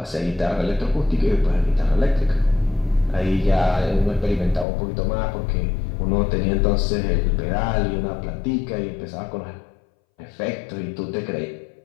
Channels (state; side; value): drops out; right; at 4.7 s